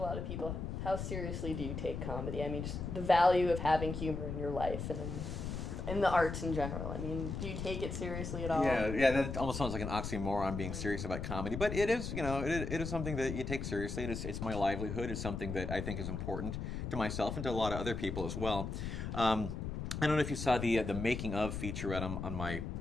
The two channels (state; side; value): noise; left; rumble, 4 dB below the sound